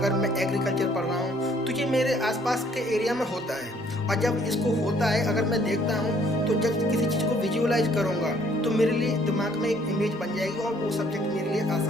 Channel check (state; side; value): normal; both; correlation 0.62